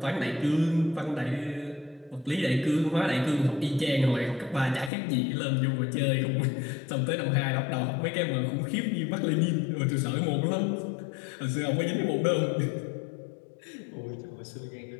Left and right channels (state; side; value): drops out; right; at 4.9 s